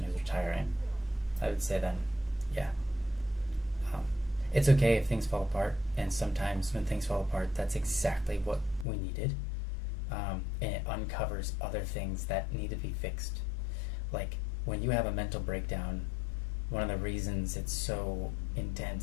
who's retiring. I would say then, yeah, it's okay if things fall apart, and sometimes when things fall apart, that's exactly what we needed, and it uncovers other things that need to be fixed. Like when you have a mental breakdown, one of the reasons it's so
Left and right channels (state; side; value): drops out; right; at 8.8 s